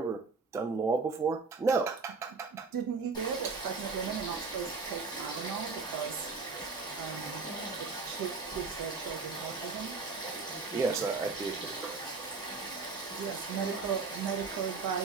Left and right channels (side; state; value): left; quieter; 4.4 dB